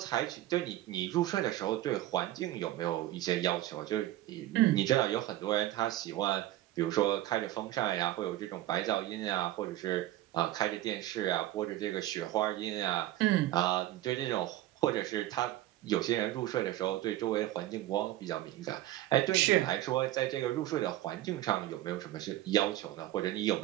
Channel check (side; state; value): left; quieter; 14.8 dB